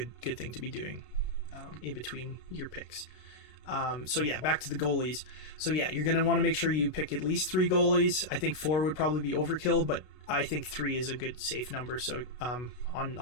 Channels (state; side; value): late; right; 32 ms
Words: thing to be doing in between your picks. So yeah, back to the goalies. So yeah, you're going to want to make sure you pick at least 3 goalies. I think 4 would probably be overkill, but I think 3 is a good safe number. So